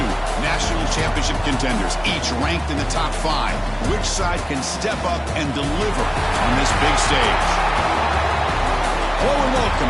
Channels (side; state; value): both; identical; correlation 1.00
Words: national championship contenders, each ranked in the top 5. Which side can step up and deliver on this big stage? Hello and welcome